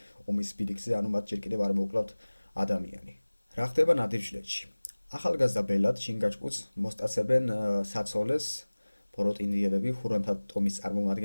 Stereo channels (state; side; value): inverted; both; correlation -1.00